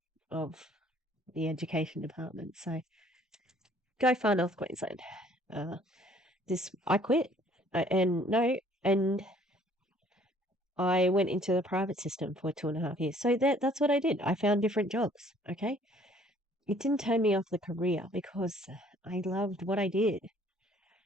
of the education department. So go far north Queensland. Uh, I quit. And I went into the private system for 2.5 years. So that's what I did. I found different jobs. Okay. It didn't turn me off the career because I loved what I did.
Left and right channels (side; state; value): both; normal; correlation 0.58